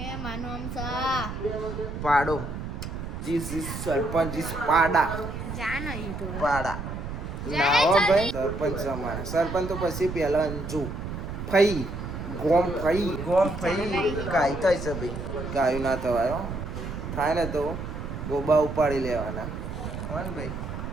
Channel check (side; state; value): right; noise; rumble, 7 dB below the sound